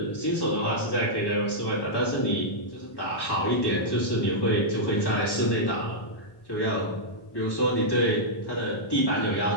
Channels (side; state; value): right; late; 1.1 ms